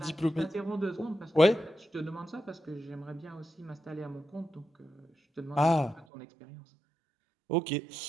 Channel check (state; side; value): drops out; left; at 6.1 s